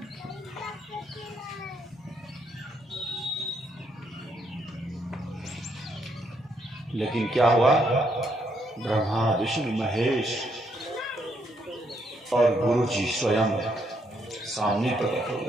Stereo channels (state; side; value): normal; both; correlation 0.75